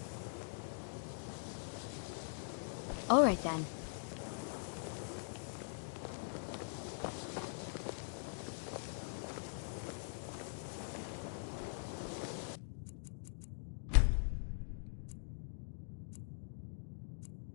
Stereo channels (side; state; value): right; silent; digital silence